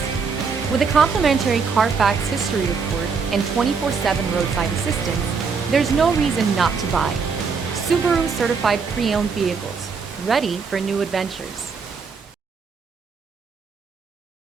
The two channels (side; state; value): left; quieter; 5.4 dB